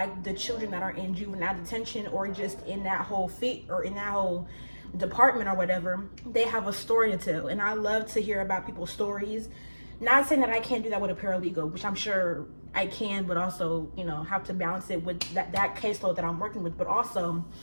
the children that are in juvenile detention or just in that whole in that whole department or whatever, they have a story to tell. And I love to hear about people's stories. Not saying that I can't do that with a paralegal, which I'm sure I can, but also, you know, have to balance it with that caseload that I'm working with. But also,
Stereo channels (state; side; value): inverted; both; correlation -1.00